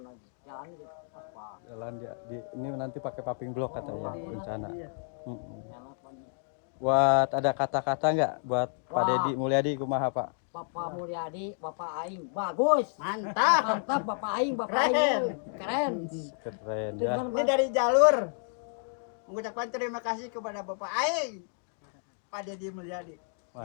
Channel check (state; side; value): silent; right; digital silence